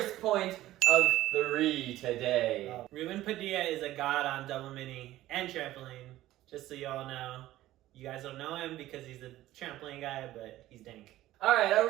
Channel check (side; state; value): left; quieter; 15.2 dB